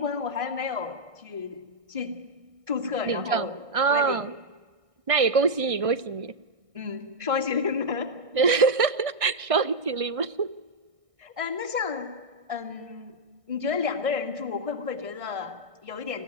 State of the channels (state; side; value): late; left; 1.6 ms